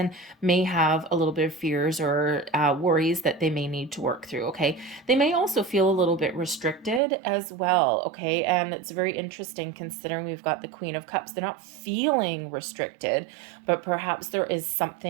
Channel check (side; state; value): left; drops out; at 7.0 s